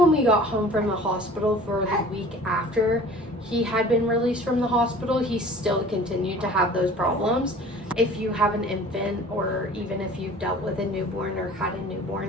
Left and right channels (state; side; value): normal; both; correlation 0.45